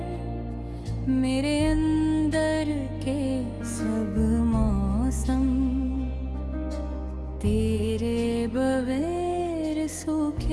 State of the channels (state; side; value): identical; both; correlation 1.00